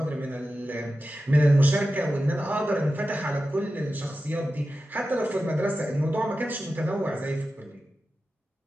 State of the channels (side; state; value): both; normal; correlation 0.93